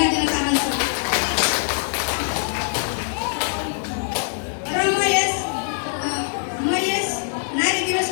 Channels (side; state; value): right; silent; 64 dB below the other